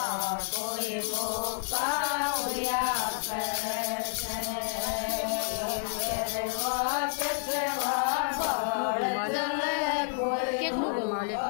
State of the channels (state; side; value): silent; right; 58 dB below the other